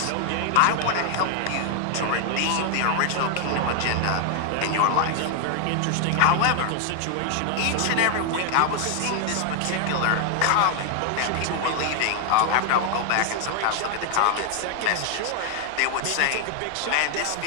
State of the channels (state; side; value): different; both; correlation 0.00